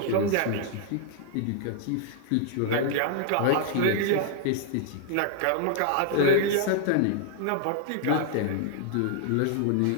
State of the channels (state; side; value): different; both; correlation 0.00